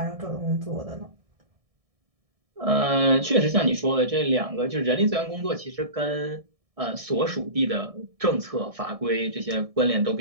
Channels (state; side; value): late; left; 1.6 ms